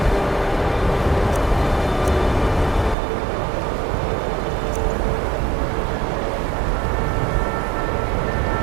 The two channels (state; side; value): drops out; left; at 3.0 s